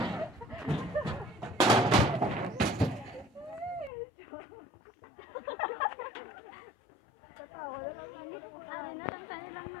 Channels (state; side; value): drops out; right; at 3.9 s